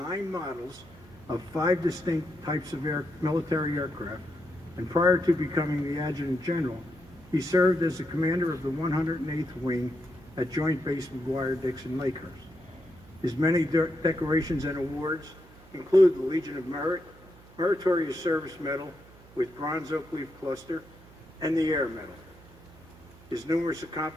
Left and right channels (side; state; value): right; noise; hum, 23 dB below the sound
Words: models of 5 distinct types of military aircraft, and prior to becoming the Adjutant General, he served as the commander of the 108th Wing at Joint Base McGuire-Dixon Lakehurst. His many decorations and awards include the Legion of Merit, Meritorious Service Medal with Bronze Oak Leaf Cluster, and the Air Medal. His numerous